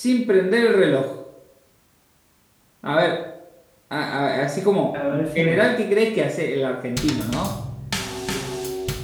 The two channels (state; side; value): identical; both; correlation 1.00